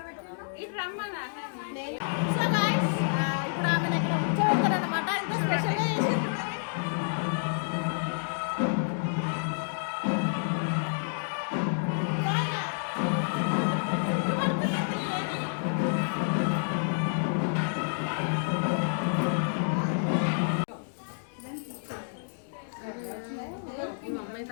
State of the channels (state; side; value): silent; right; digital silence